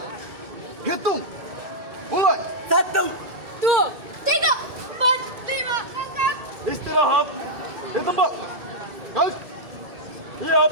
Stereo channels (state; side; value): late; left; 2.2 ms